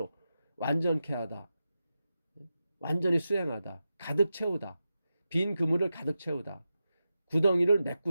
완전케 하다. 완전히 수행하다. 가득 채우다. 빈 그물을 가득 채우다. 구덩이를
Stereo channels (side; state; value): both; inverted; correlation -0.91